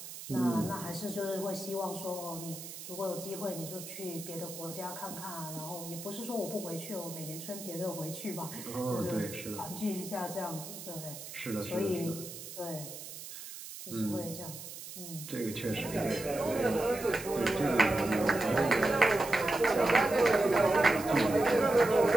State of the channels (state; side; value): noise; right; hiss, 11 dB below the sound